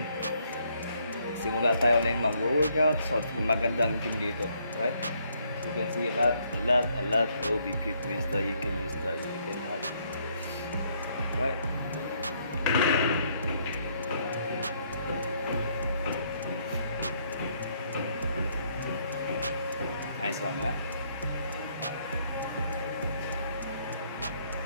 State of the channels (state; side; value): inverted; both; correlation -0.70